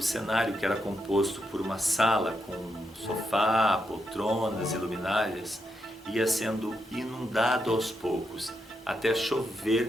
cenário, que era composto por uma sala com sofá, poltronas e luminárias, ia sendo inundado aos poucos, até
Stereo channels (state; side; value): normal; both; correlation 0.82